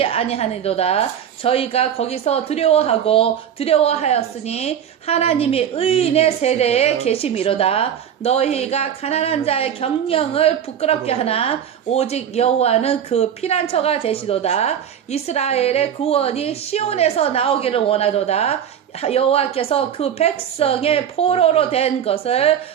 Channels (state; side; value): quieter; left; 9.1 dB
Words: 아니하니도다. 저희가 거기서 두려워하였으니 하나님이 의인의 세대에 계심이로다. 너희가 가난한 자의 경영을 부끄럽게 하나 오직 여호와는 그 피난처가 되시도다. 이스라엘의 구원이 시온에서 나오기를 원하도다. 여호와께서 그 백성의 포로로 된 것을